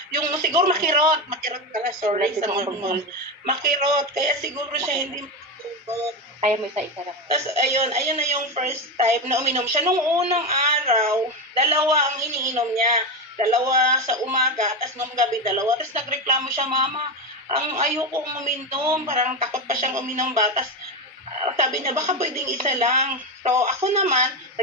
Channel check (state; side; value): normal; both; correlation 0.14